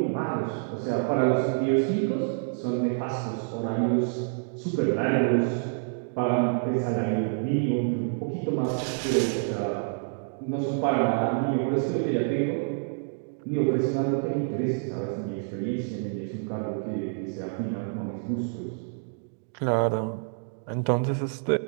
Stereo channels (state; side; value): silent; left; digital silence